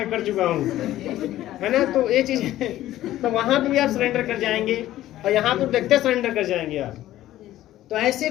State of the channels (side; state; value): right; quieter; 14.1 dB